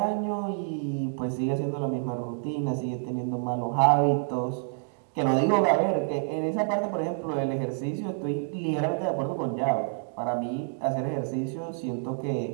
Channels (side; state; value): left; silent; digital silence